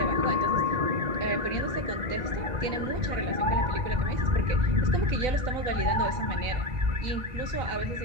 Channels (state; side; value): late; left; 4.0 ms